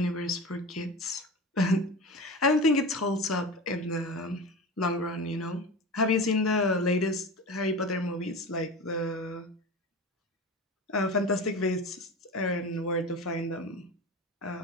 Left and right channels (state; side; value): normal; both; correlation 0.30